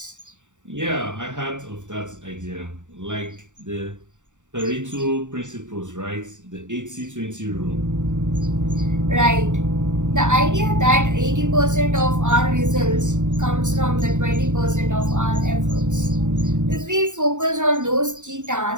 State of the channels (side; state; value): left; late; 0.85 ms